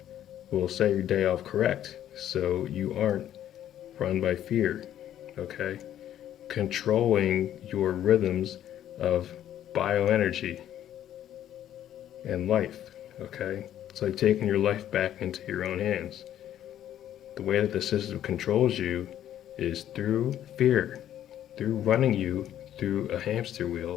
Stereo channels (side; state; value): right; quieter; 11.3 dB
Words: will set your day off correct so you aren't run by fear. Okay, controlling your rhythms of bioenergy and life. Okay, it's like taking your life back into your own hands. The way that the system controls you is through fear, through running you through a hamster